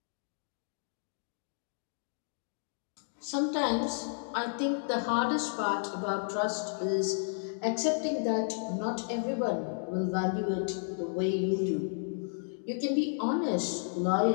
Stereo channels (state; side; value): silent; right; digital silence